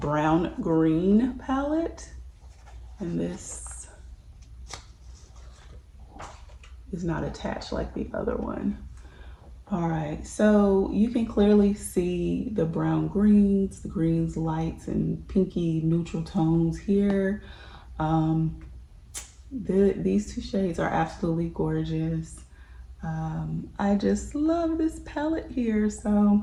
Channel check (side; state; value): both; identical; correlation 1.00